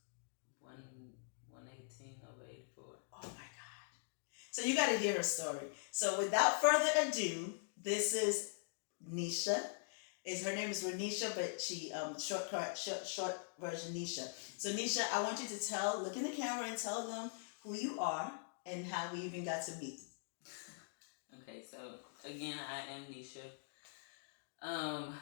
118 over 84. Oh my God. So you got to hear her story. So without further ado, this is Nisha. Her name is Renisha, but she short version Nisha. So Nisha, I want you to look in the camera and tell them who you are and how we even got to meet. Okay, so again, I am Nisha.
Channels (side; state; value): right; silent; digital silence